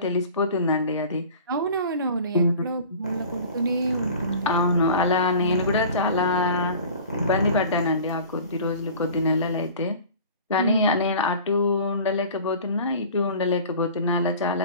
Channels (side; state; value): both; inverted; correlation -0.42